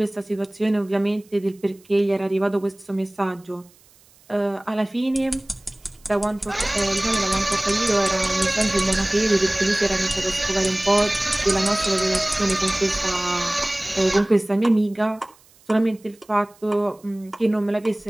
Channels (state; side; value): noise; right; hiss, 29 dB below the sound